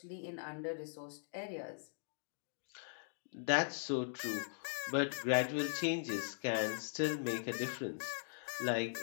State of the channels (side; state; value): right; silent; digital silence